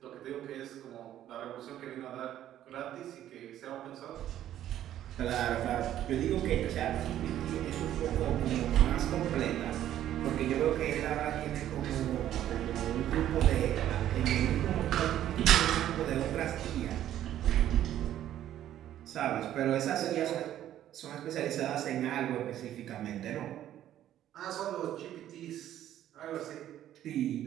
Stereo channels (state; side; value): quieter; left; 11.9 dB